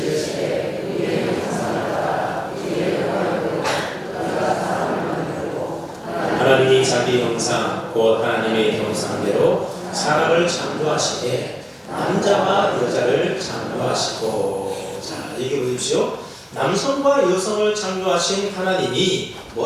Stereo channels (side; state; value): both; identical; correlation 1.00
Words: 하나님이 자기 형상 곧 하나님의 형상대로 사람을 창조하시되 남자와 여자를 창조하시고 자 얘기해 보십시오. 남성과 여성을 창조하신 하나님이